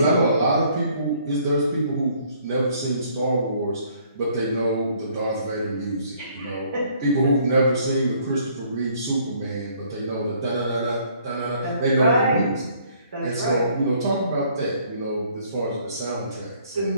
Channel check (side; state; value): both; inverted; correlation -0.62